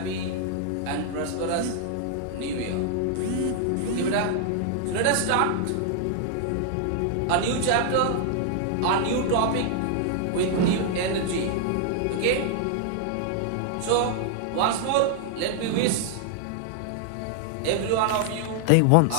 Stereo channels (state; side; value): different; both; correlation 0.00